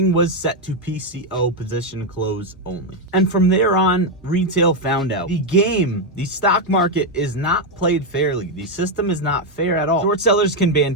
was set to PCO, position close only. And from there on, retail found out the stock market is not played fairly. The system is not fair at all. Short sellers can band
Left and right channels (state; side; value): normal; both; correlation 0.04